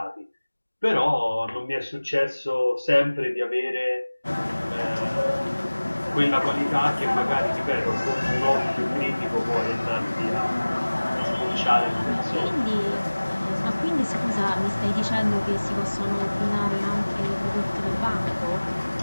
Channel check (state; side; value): inverted; both; correlation -1.00